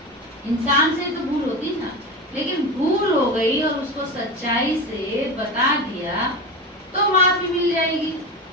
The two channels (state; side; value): normal; both; correlation 0.24